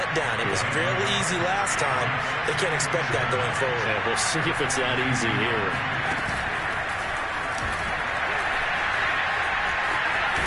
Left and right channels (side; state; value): both; identical; correlation 1.00